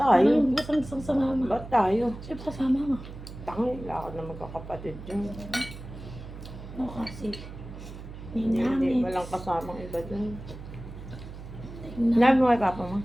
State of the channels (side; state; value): right; noise; hum, 13 dB below the sound